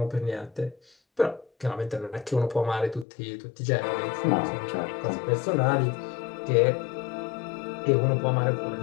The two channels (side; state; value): right; drops out; at 3.1 s